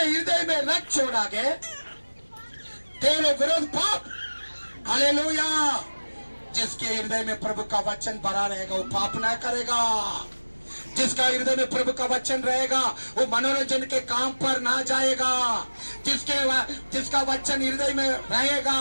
हृदय में रख छोड़ा है, तेरे विरोध पाप। हालेलुया। जिसके हृदय में प्रभु का वचन भरा रहेगा वो पाप ना करेगा। जिसका हृदय में प्रभु का वचन रहेगा वो मनोरंजन के काम पर ना जाएगा। जिसका वचन हृदय में रहेगा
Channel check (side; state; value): both; inverted; correlation -1.00